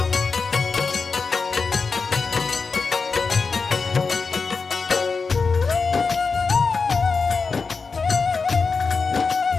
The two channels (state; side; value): quieter; right; 4.8 dB